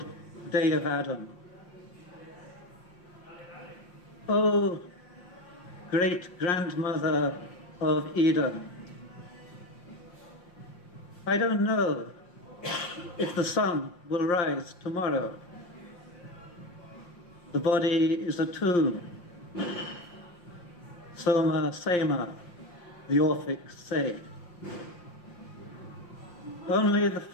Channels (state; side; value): late; right; 5.7 ms